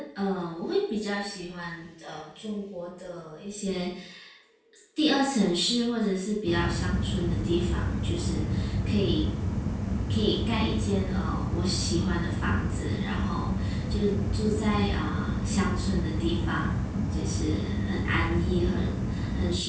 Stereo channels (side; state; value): both; identical; correlation 1.00